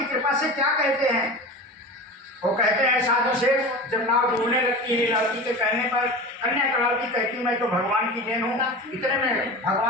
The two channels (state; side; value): normal; both; correlation 0.31